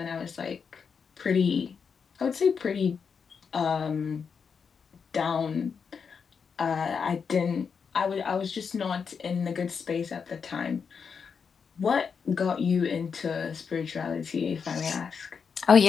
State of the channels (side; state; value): right; quieter; 6.1 dB